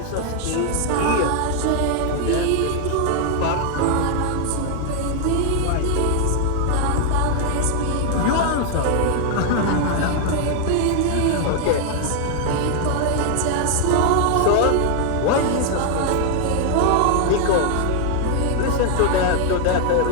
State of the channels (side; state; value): both; different; correlation 0.00